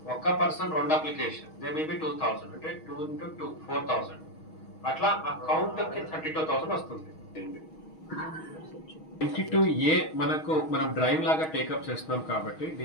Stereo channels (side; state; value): right; late; 6.3 ms